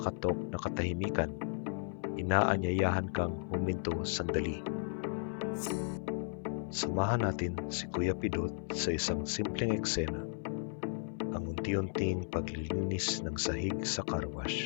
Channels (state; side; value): silent; right; 54 dB below the other